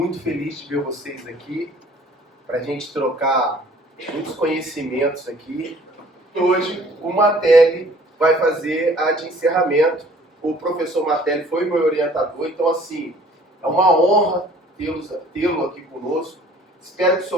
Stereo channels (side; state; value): both; normal; correlation 0.53